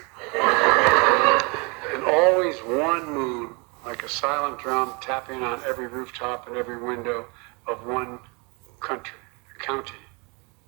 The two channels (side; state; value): left; quieter; 30.3 dB